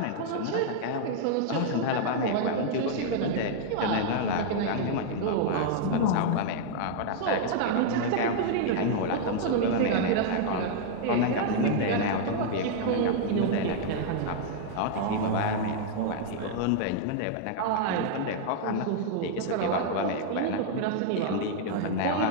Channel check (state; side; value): different; both; correlation -0.01